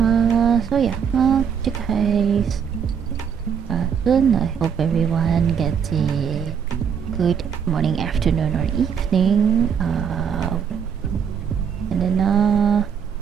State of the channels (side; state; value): left; quieter; 7.3 dB